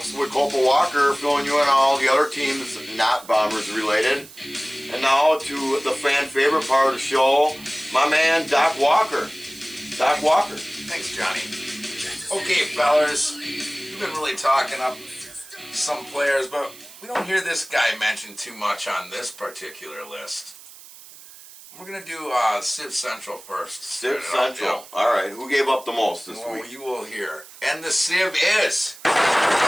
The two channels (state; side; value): noise; right; hiss, 19 dB below the sound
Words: with Copa Walker filling you in on all the other teams not Bombers related. And now to the fan favorite part of the show, my man Doc Walker. Doc Walker. Thanks, Johnny. Okay, fellas, we've been really talking up some players, but we don't hear this guy mentioned too much on this particular list. We're going to do Civ Central first. Civ Start it Central. off, All right, who gave up the most this yeah. Well, week? you will hear. And the Civ is